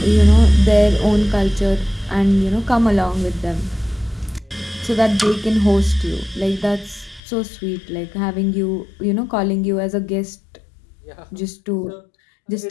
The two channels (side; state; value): right; drops out; at 7.2 s